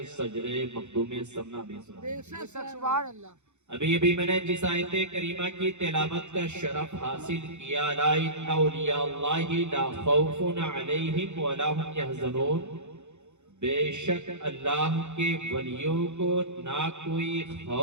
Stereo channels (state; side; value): late; left; 0.83 ms